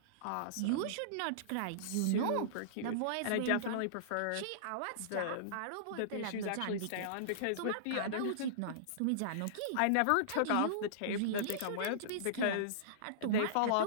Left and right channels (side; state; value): both; different; correlation -0.03